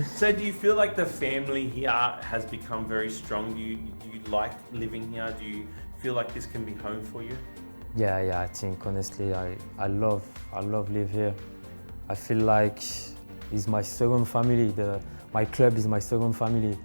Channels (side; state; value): both; inverted; correlation -1.00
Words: So do you feel like the family here has become very strong? Do you like living here? Do you feel like this can be home for you? Yeah. I think honestly, I love live here. I feel like it's my second family. My club is my second family.